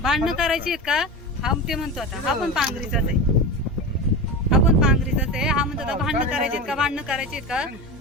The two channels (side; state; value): both; normal; correlation 0.25